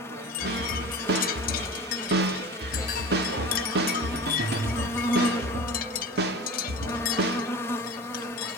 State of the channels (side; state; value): both; normal; correlation 0.34